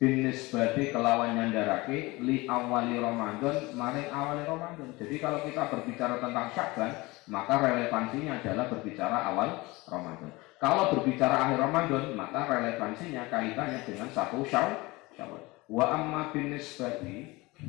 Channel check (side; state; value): right; quieter; 22.4 dB